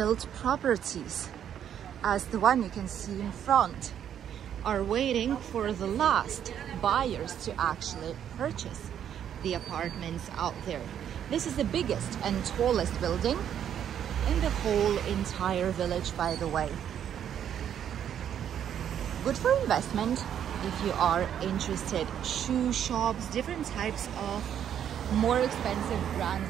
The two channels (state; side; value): quieter; left; 9.5 dB